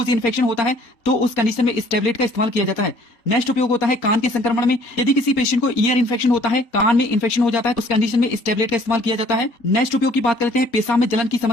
इन्फेक्शन होता है तो उस कंडीशन में इस टैबलेट का इस्तेमाल किया जाता है। नेक्स्ट उपयोग होता है कान के संक्रमण में, यदि किसी पेशेंट को ईयर इन्फेक्शन होता है, कान में इन्फेक्शन हो जाता है तो उस कंडीशन में इस टैबलेट का इस्तेमाल किया जाता है। नेक्स्ट उपयोग की बात कर लेते हैं पेशाब में जलन की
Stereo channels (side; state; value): right; late; 4.3 ms